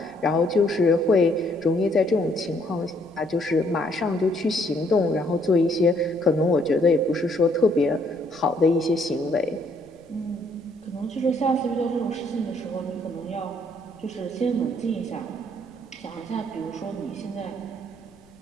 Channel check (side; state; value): left; noise; rumble, 29 dB below the sound